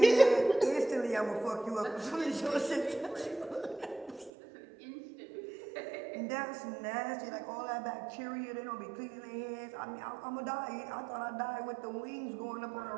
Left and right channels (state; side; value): drops out; left; at 4.3 s